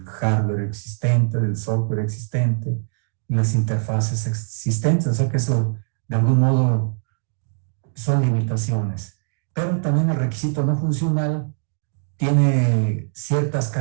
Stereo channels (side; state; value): left; silent; digital silence